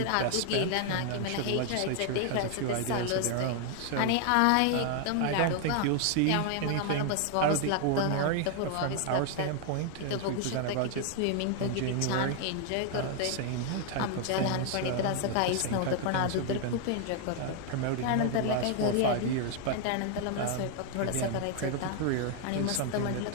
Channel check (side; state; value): both; different; correlation 0.00